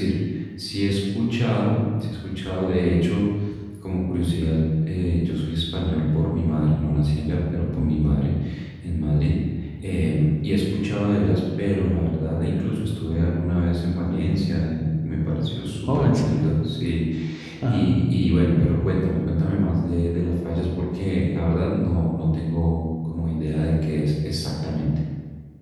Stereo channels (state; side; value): identical; both; correlation 1.00